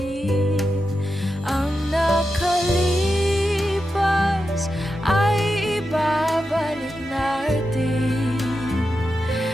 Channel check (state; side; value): normal; both; correlation 0.89